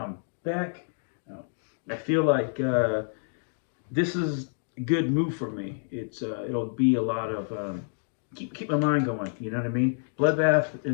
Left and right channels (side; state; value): right; silent; digital silence